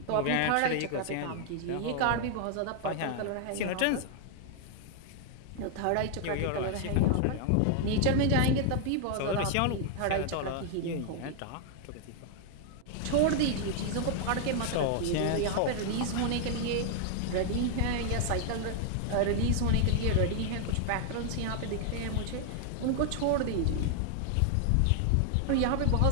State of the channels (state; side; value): different; both; correlation 0.00